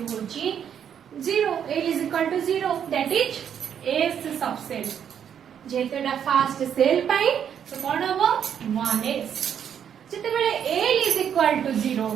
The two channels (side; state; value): left; quieter; 8.6 dB